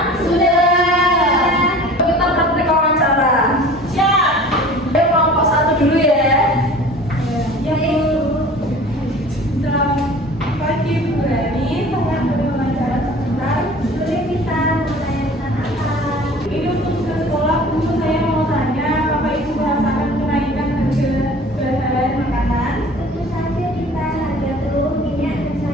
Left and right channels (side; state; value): both; normal; correlation 0.44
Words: Sudah. Kita praktek wawancara. Siap. Kelompok 1 dulu ya. Ya Bu. Selamat pagi Bu Rani. Saya boleh wawancara sebentar. Boleh kita menanyakan apa? Ini untuk ke sekolah Bu, saya mau tanya Bapak Ibu merasakan kenaikan harga bahan makanan? Tentu saja kita harga telur, minyak, dan